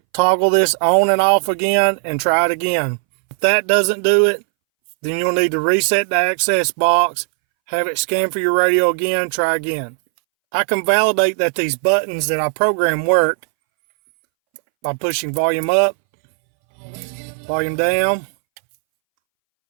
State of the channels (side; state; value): left; silent; 66 dB below the other